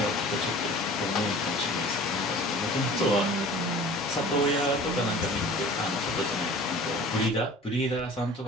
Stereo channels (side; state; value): both; normal; correlation 0.43